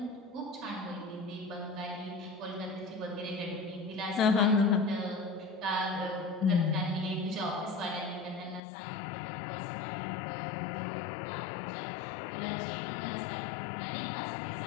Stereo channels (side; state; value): right; drops out; at 8.6 s